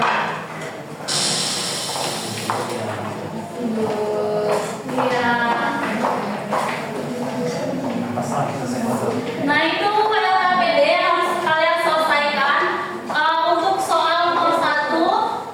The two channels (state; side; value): identical; both; correlation 1.00